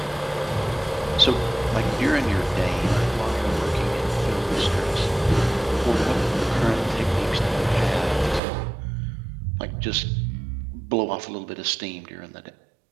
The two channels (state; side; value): drops out; left; at 8.4 s